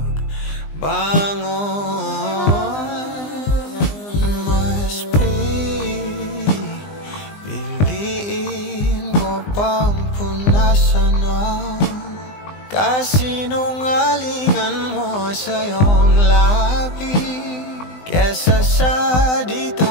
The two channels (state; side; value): late; right; 20 ms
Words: Pangpunasan ng kasinungalingan mo sa iyong labi, kesa sa di